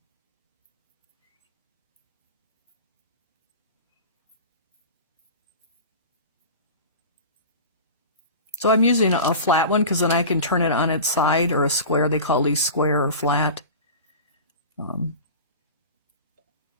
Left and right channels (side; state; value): both; inverted; correlation -0.34